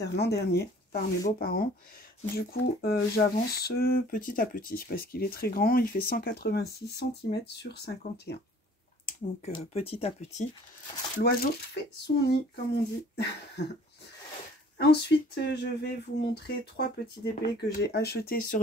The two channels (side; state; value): both; normal; correlation 0.52